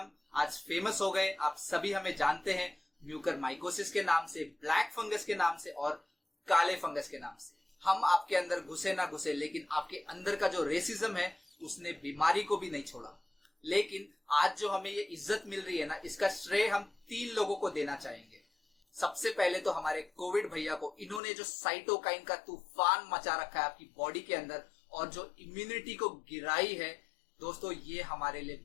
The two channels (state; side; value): drops out; right; at 21.2 s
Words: आज फेमस हो गए। आप सभी हमें जानते हैं म्यूकरमाइकोसिस के नाम से, ब्लैक फंगस के नाम से और काले फंगस के नाम से। हम आपके अंदर घुसे ना घुसे, लेकिन आपके अंदर का जो रेसिज्म है उसने बीमारी को भी नहीं छोड़ा। लेकिन आज जो हमें ये इज्जत मिल रही है ना, इसका श्रेय हम 3 लोगों को देना चाहेंगे। सबसे पहले तो हमारे कोविड भैया को। इन्होंने जो साइटोकाइन का तूफान मचा रखा है आपकी बॉडी के अंदर और जो इम्यूनिटी को गिराई है, दोस्तों ये हमारे